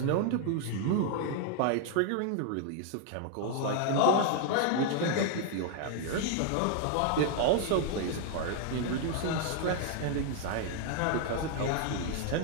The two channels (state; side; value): different; both; correlation 0.00